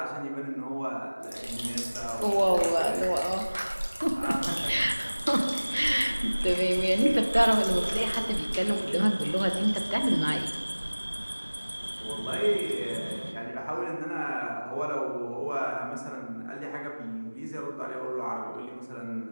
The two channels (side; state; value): both; inverted; correlation -1.00